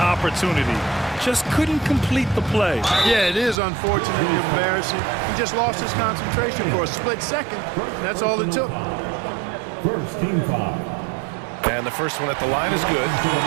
Just couldn't complete the play. Yeah, it is unfortunately embarrassing. He just lost his concentration for a split second. That's all it took. First team foul. And the first one at the line is good.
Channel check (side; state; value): left; drops out; at 3.6 s